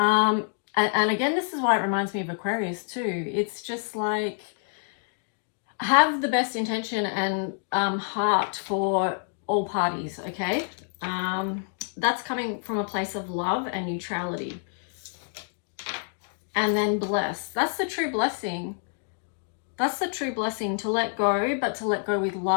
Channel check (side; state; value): right; silent; 60 dB below the other